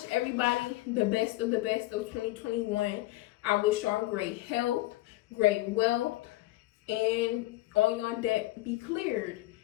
everybody the best of 2021. I wish y'all great health, great wealth, and all y'all debt be cleared.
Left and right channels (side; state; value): right; quieter; 18.0 dB